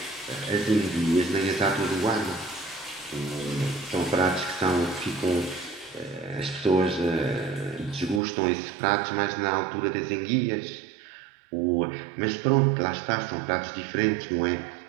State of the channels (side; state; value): left; drops out; at 8.2 s